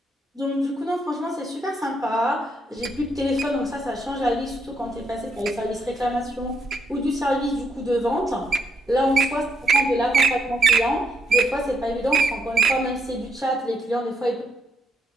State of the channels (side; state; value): both; normal; correlation 0.75